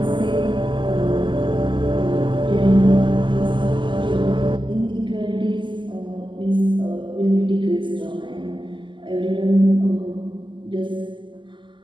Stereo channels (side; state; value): left; late; 0.24 ms